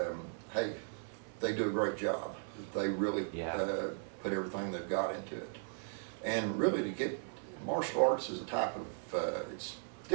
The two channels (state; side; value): silent; left; 53 dB below the other